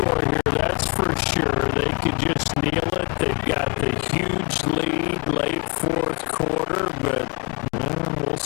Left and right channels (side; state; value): right; quieter; 32.3 dB